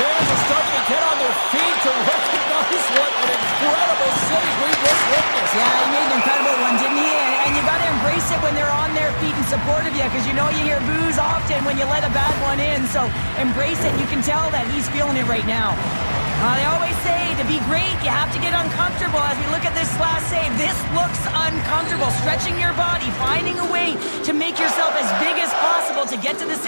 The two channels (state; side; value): inverted; both; correlation -1.00